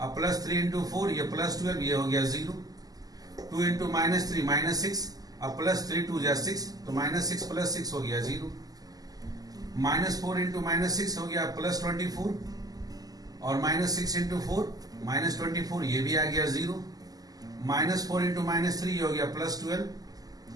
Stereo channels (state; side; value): late; left; 0.18 ms